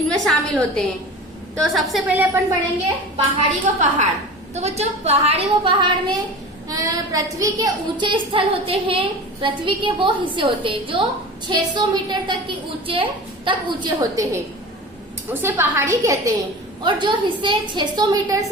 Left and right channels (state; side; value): normal; both; correlation 0.34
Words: शामिल होते हैं। तो सबसे पहले अपन पढ़ेंगे पहाड़ी व पहाड़। तो बच्चों, पहाड़ी व पहाड़ में पृथ्वी के ऊंचे स्थल होते हैं। पृथ्वी के वो हिस्से होते हैं जो 600 मीटर तक ऊंचे होते हैं, उसे पहाड़ी कहते हैं। और जो हिस्से 600 मीटर